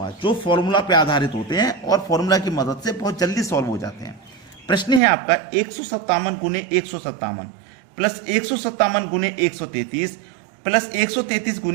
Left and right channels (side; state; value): left; drops out; at 5.0 s